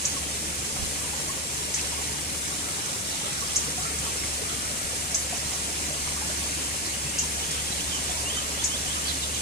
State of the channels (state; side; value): normal; both; correlation 0.11